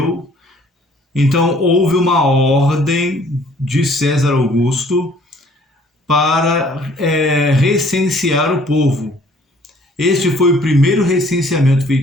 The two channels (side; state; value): both; normal; correlation 0.58